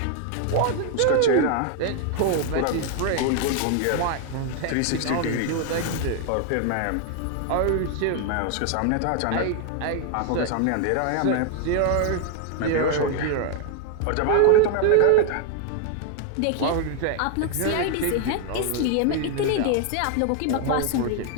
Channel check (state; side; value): different; both; correlation 0.00